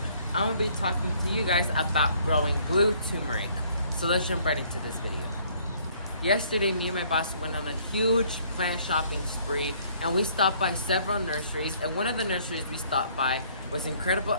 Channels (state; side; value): inverted; both; correlation -0.62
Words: I'm going to be talking to you guys about growing blue turmeric. So let's jump right into this video. Yesterday, me and my boss went on a huge plant shopping spree, and we stopped by several nurseries, and one of the nurseries we stopped by was Incredible